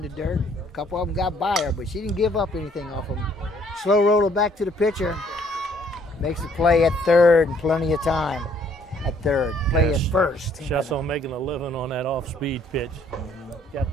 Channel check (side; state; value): both; normal; correlation 0.63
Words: the dirt. A couple of them got by her, but she didn't give up anything off them. Slow roller back to the pitcher. Makes the play at third and plenty of time at third. Play at first. Just on making a living on that off-speed pitch. Got